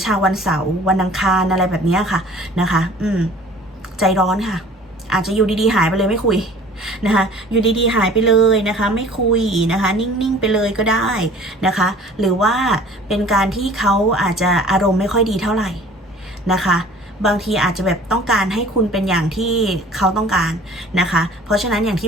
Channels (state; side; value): normal; both; correlation 0.48